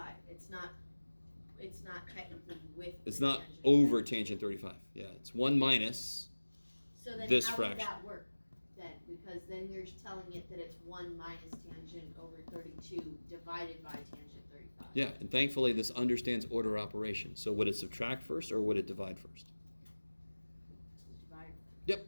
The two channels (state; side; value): inverted; both; correlation -1.00